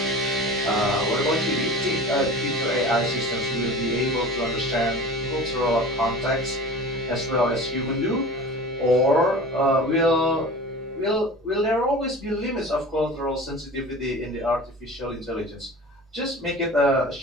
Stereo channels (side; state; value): both; normal; correlation 0.38